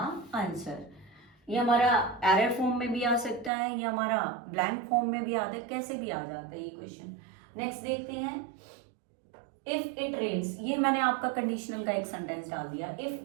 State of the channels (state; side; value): drops out; left; at 3.5 s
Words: answer. ये हमारा एरर फॉर्म में भी आ सकता है, ये हमारा ब्लैंक फॉर्म में भी आता है, कैसे भी आ जाता है ये क्वेश्चन। नेक्स्ट देखते हैं, इफ इट रेन्स, ये मैंने आपका कंडीशनल का एक सेंटेंस डाल दिया,